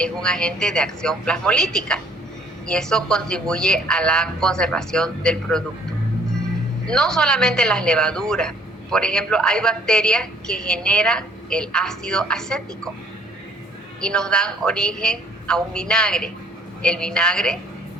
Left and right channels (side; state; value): both; normal; correlation 0.59